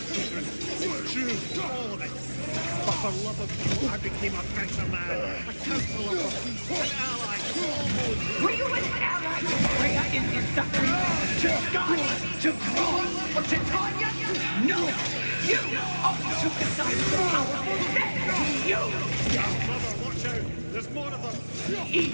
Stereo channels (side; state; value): both; inverted; correlation -1.00